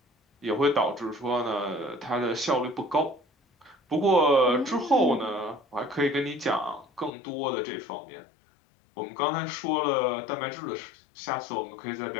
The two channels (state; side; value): drops out; right; at 7.1 s